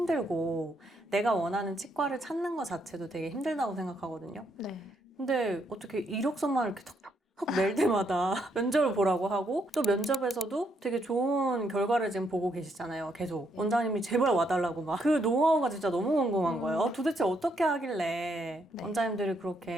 내가 원하는 치과를 찾는 것 자체도 되게 힘들다고 생각하거든요. 네. 근데 어떻게 이력서만 이렇게 톡톡 낼 때마다 면접을 보라고 하고 또 면접에서도 되게 좋은 결과를 지금 보고 계시잖아요. 계속 네. 원장님이 제발 와달라고 막 그 노하우가 진짜 너무 궁금한 거예요. 도대체 어떻게 하길래 네. 원장님들이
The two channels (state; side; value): normal; both; correlation 0.75